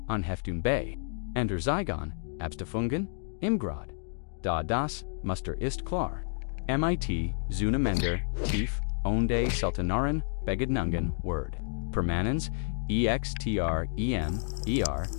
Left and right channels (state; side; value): silent; right; digital silence